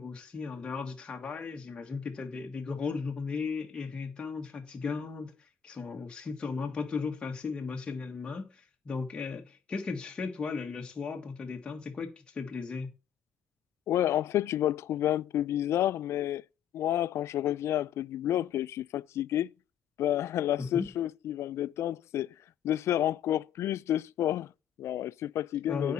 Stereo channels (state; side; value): quieter; right; 9.2 dB